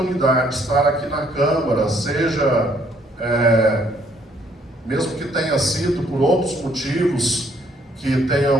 de estar aqui na Câmara, seja, mesmo que tenha sido por outros motivos que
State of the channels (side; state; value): both; normal; correlation 0.66